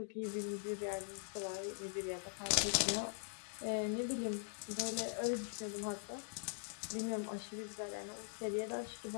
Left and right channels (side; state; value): right; silent; digital silence